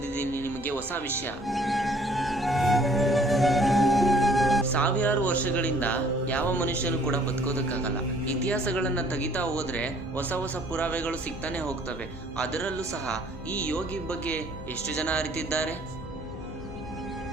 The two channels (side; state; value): both; normal; correlation 0.58